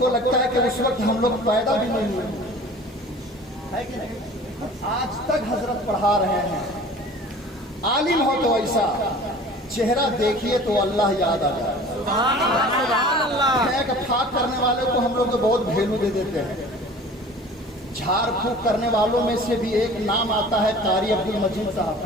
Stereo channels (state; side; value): normal; both; correlation 0.44